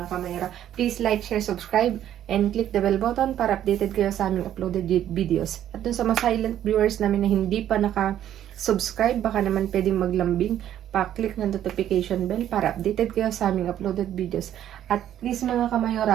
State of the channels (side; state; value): left; quieter; 11.2 dB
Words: kamayora. Please like, share, subscribe, and click the bell button para updated kayo sa aming uploaded videos. At dun sa mga silent viewers namin na hindi pa naka-subscribe, baka naman pwedeng maglambing, pa-click ng notification bell para updated kayo sa aming uploaded videos. At please mga